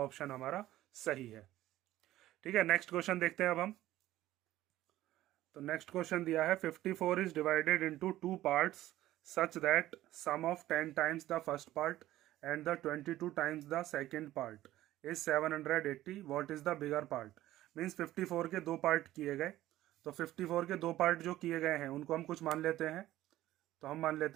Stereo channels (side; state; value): left; quieter; 14.8 dB